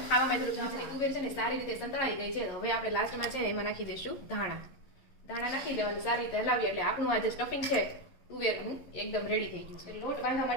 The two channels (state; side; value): late; right; 11 ms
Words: ખાવામાં થોડું તુવેર છે ને સારી રીતે સંતળાઈ ગઈ છે. હવે આપણે લાસ્ટમાં છે ને એમાં નાખી દઈશું ધાણા નાખી દેવાનું. સારી રીતે હલાવીએ એટલે આપણું આ જે સ્ટફિંગ છે તુવેરનું એકદમ રેડી થઈ ગયું છે. લોટ બાંધવા